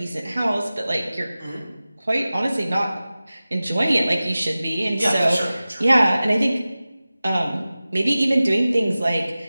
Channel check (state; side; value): inverted; both; correlation -0.96